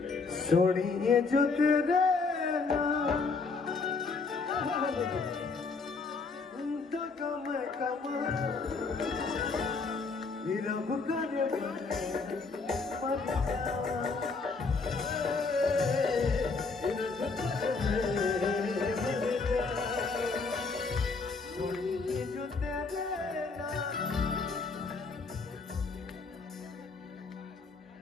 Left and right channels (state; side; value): quieter; right; 4.4 dB